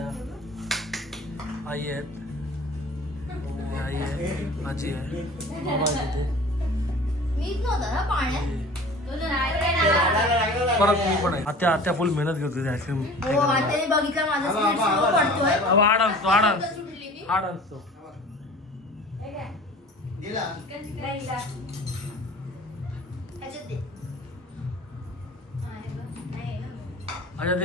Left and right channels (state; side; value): normal; both; correlation 0.43